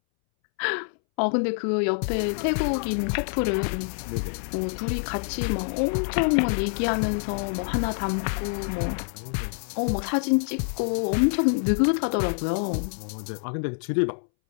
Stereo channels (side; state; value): right; silent; 61 dB below the other